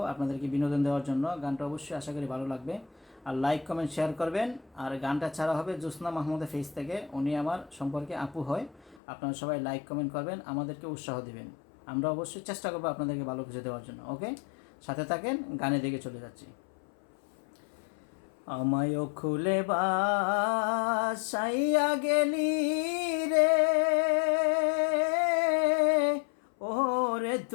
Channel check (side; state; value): right; drops out; at 9.0 s